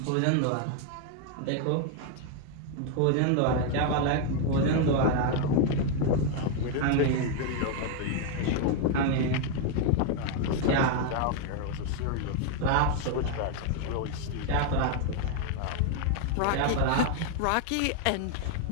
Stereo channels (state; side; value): different; both; correlation 0.01